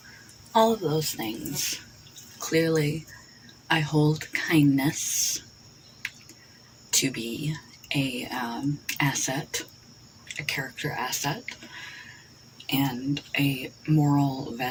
all of those things. Clearly, I hold kindness to be a asset, a character asset, and a moral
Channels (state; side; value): identical; both; correlation 1.00